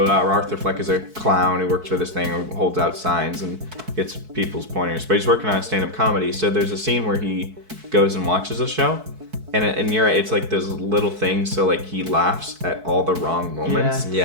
Arthur Fleck is a clown who works for this thing, who holds out signs and gets people's pointers. But he's working on a stand-up comedy. So there's a scene where he goes and watches a show. And you're right, it's like those little things, so like he laughs at all the wrong moments.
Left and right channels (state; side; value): late; left; 4.6 ms